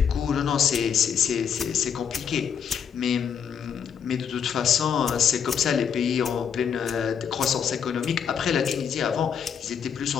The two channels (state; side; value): quieter; right; 7.6 dB